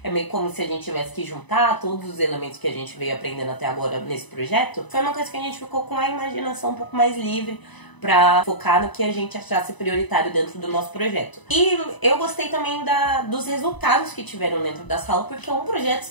é meio como se a gente tivesse que juntar todos os elementos que a gente veio aprendendo até agora nesse projeto. Foi uma coisa que a gente ficou com a imaginação um pouco mais livre pra focar no que a gente achasse prioritário dentro do nosso projeto. E eu gostei também dos resultados que tiveram dentro da sala, porque um projeto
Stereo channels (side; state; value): right; late; 1.0 ms